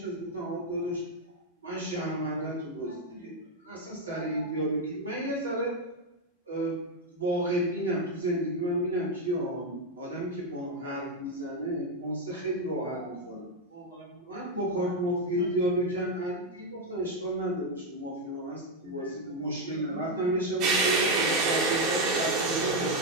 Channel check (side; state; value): both; normal; correlation 0.03